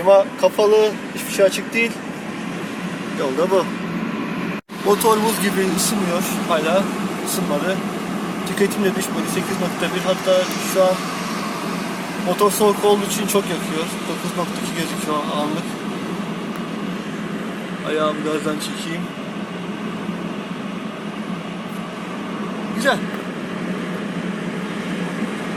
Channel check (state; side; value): identical; both; correlation 1.00